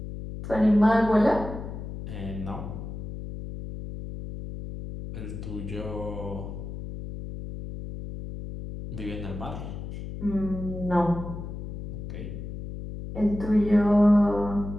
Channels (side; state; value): left; noise; hum, 8 dB below the sound